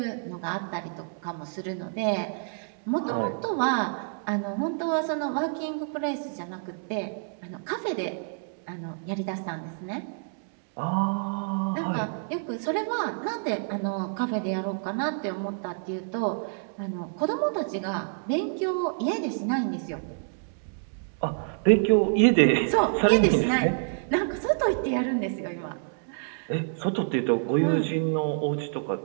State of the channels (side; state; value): left; silent; digital silence